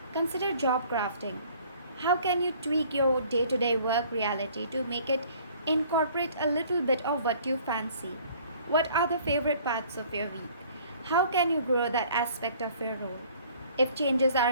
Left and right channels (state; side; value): inverted; both; correlation -0.55